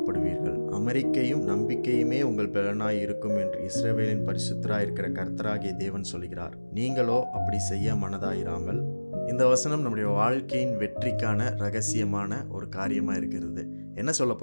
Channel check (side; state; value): both; inverted; correlation -1.00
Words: அமெரிக்கையும் நம்பிக்கையுமே உங்கள் பலனாய் இருக்கும் என்று இஸ்ரவேலின் பரிசுத்தராயிருக்கிற கர்த்தராகிய தேவன் சொல்கிறார். நீங்களோ அப்படி செய்ய மனதாயிராமல். இந்த வசனம் நம்முடைய வாழ்க்கையின் வெற்றிக்கான ரகசியமான ஒரு காரியமாக இருக்கிறது. என்ன